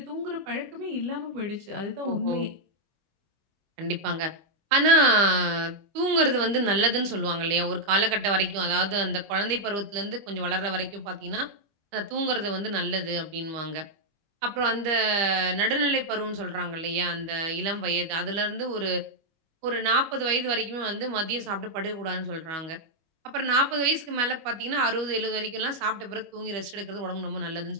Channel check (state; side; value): late; left; 25 ms